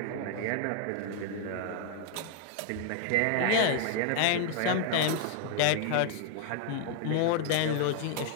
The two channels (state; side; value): different; both; correlation 0.00